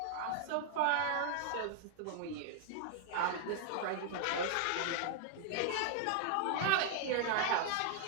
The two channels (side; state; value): both; different; correlation 0.00